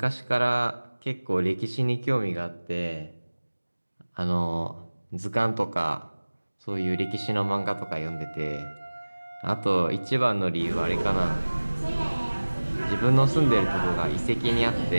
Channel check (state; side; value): inverted; both; correlation -1.00